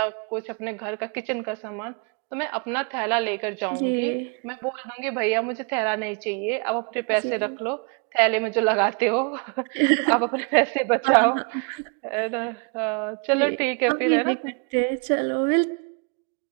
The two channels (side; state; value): left; quieter; 35.5 dB